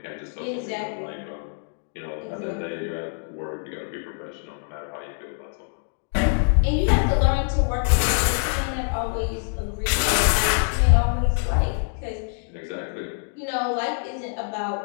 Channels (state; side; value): silent; right; 59 dB below the other